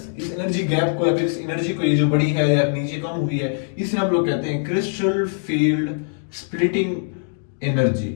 इस एनर्जी गैप को या फिर इस एनर्जी को, ये जो बड़ी है या नीचे कम हुई है, इसे हम लोग कहते हैं crystal field splitting energy,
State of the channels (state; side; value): silent; right; digital silence